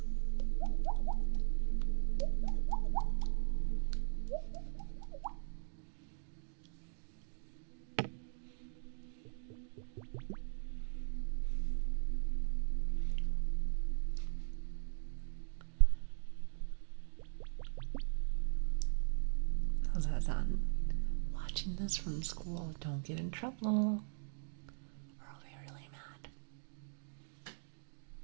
How's that sound? Watching this from school, don't get in trouble. Or I'll be really mad.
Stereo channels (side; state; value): left; silent; digital silence